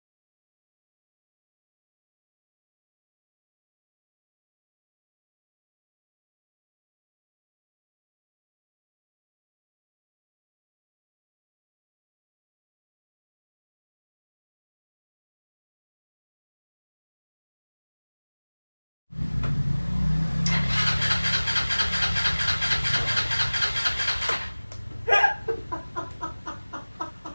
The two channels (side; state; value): both; inverted; correlation -1.00